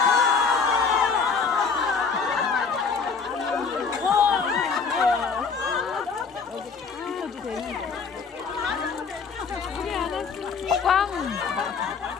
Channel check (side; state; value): right; quieter; 5.3 dB